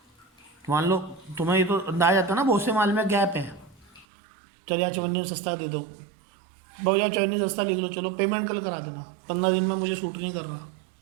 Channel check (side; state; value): left; drops out; at 4.0 s